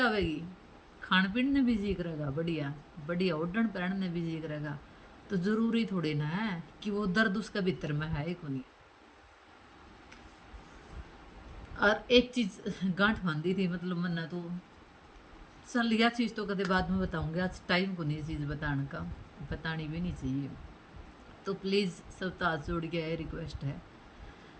खान पीन ने भी जी करेगा, बढ़िया बढ़िया ओढ़न पहन ने भी जी करेगा। तो जरूरी थोड़ी ना है कि वो दर्द उसका भीतर में है ही को नहीं। और एक चीज गांठ बांधी थी, मतलब मन्ना तो चल यह चीज़ तो कदे बाद में बताऊंगी, आज टाइम को नहीं चीज़ बताने का, बतानी भी नहीं चाहिए। तो प्लीज़ सब तो हाथ जोड़ के यह रिक्वेस्ट है,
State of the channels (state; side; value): identical; both; correlation 1.00